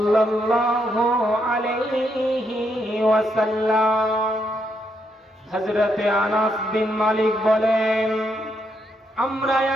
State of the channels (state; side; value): normal; both; correlation 0.78